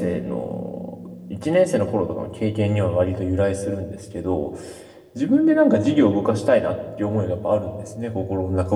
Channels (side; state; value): both; identical; correlation 1.00